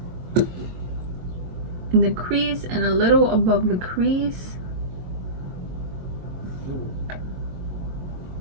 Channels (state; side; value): late; left; 22 ms